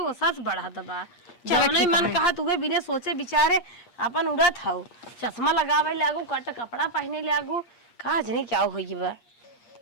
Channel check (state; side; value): late; right; 8.5 ms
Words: सच बढ़ा दबा, जौने मन कहा तुहे बिना सोचे बिचारे अपन उड़त हऊ। चश्मा लगावे लागू, कट कपड़ा पहने लागू, का जनी क्या होई बा।